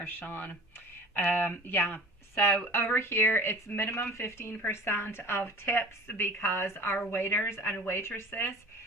Sean. Yeah. So over here, it's minimum 15% of tips because our waiters and waitresses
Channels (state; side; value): normal; both; correlation 0.41